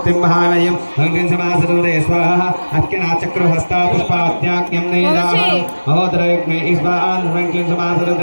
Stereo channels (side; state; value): both; inverted; correlation -1.00